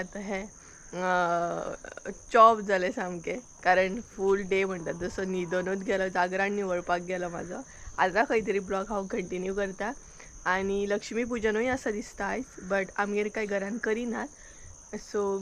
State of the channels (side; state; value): both; identical; correlation 1.00